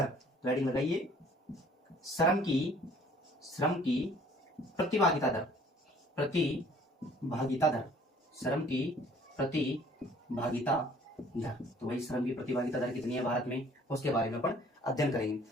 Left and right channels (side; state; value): both; normal; correlation 0.55